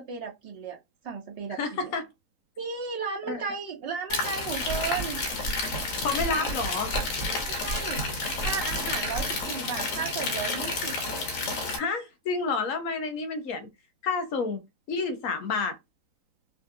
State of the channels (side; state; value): right; late; 3.9 ms